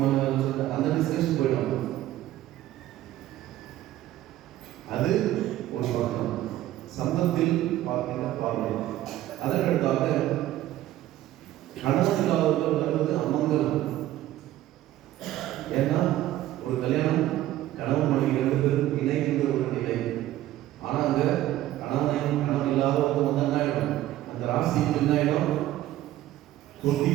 வேலை சொல்லிட்டு அந்த டிஸ்கஷன் போயிடுவாங்க. அது ஒரு பக்கம் சம்பந்தத்தில் பார்க்கின்ற பார்வை. அதற்கடுத்தாக கணவன் இல்லாதவர்கள் வருவது அமங்கலம். ஏன்னா ஒரு கல்யாணம் கணவன் மனைவி 2 பேரும் இணைகின்ற ஒரு நிலை. ஆனால் அங்கே கணவன் இல்லாதவங்க வந்து என்ன ஆகிடும், அந்த ராசிக்கு என்ன ஆகிடும்,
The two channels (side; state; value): left; quieter; 14.2 dB